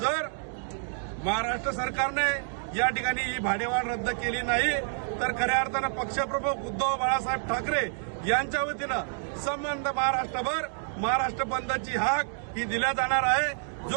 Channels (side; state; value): left; silent; digital silence